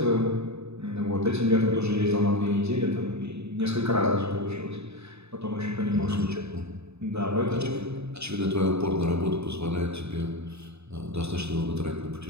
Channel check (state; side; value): late; left; 0.80 ms